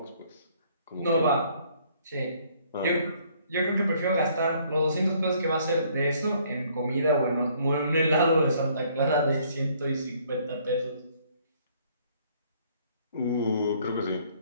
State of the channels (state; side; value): inverted; both; correlation -0.63